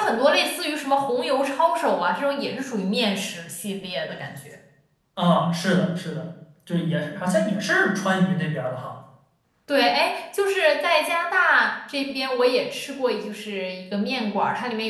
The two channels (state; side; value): identical; both; correlation 1.00